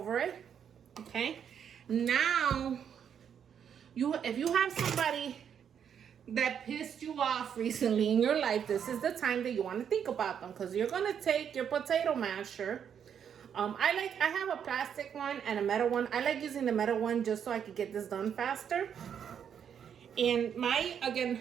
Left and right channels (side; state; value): left; quieter; 8.2 dB